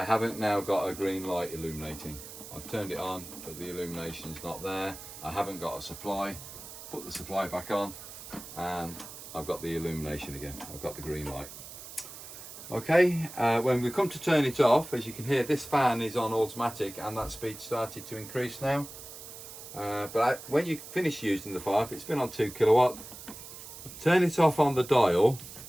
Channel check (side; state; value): right; noise; hiss, 13 dB below the sound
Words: haven't now got a green light illuminating. I've turned it on, but the illumination's not there. I haven't got a supply. Put the supply back on, and I've got the illumination again. I've got the green light. Okay, when we come to turn it off, as you can hear, this fan is on automatic and that speed started to increase now. When you finish using the fire, if it's been on 2 kilowatt, turn it off on the dial,